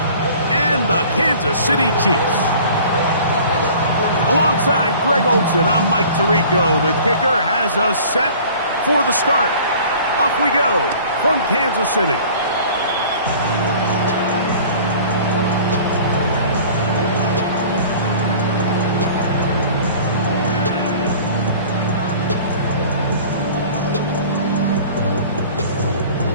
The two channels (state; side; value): inverted; both; correlation -0.46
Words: and the Kansas City Chiefs. Alongside Greg Olson, I'm Mike Tirico. The kicker has us set for the start. Off we go from Kansas City.